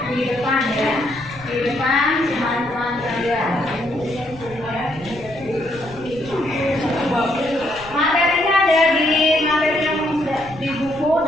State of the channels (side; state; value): left; noise; rumble, 20 dB below the sound